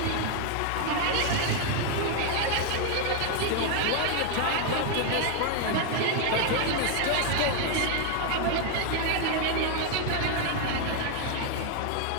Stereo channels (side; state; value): both; different; correlation 0.01